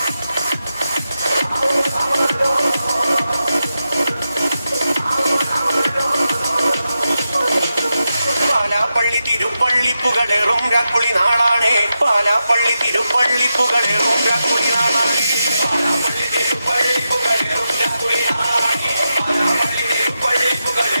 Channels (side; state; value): both; inverted; correlation -0.89